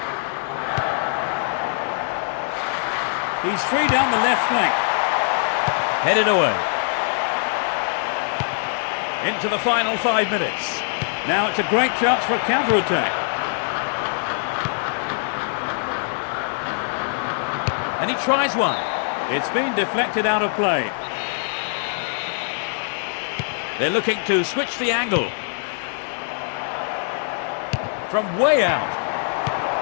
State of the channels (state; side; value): silent; right; digital silence